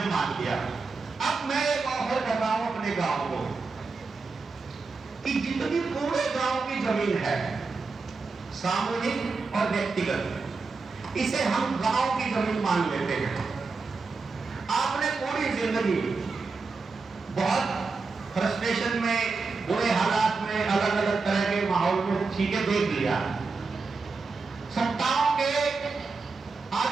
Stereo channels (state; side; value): quieter; left; 4.3 dB